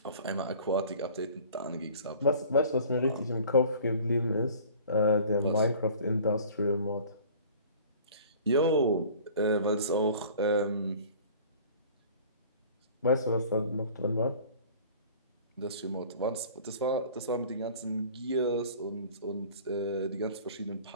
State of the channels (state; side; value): inverted; both; correlation -0.47